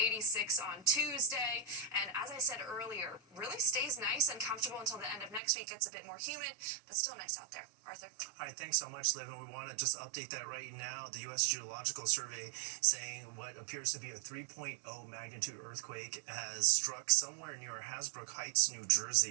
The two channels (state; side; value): drops out; left; at 5.4 s